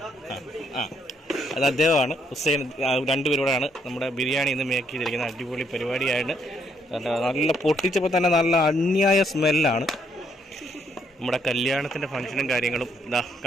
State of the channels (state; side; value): normal; both; correlation 0.72